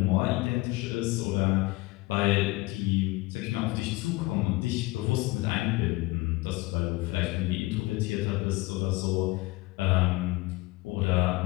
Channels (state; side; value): quieter; right; 21.1 dB